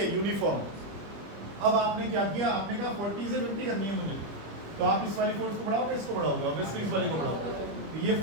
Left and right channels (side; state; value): left; late; 25 ms